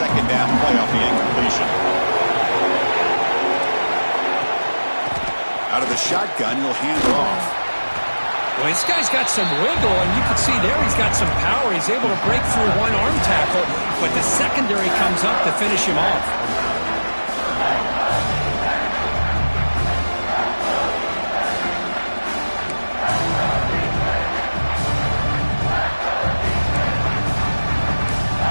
down play off the incompletion. Out of the shotgun, he'll hand it off. Well, this guy's got some wiggle, and you can see there he's got some power. He's able to break through one arm tackle, but the secondary comes up to finish him off.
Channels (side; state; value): both; inverted; correlation -1.00